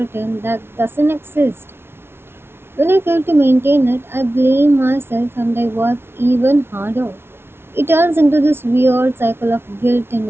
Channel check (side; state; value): left; late; 0.12 ms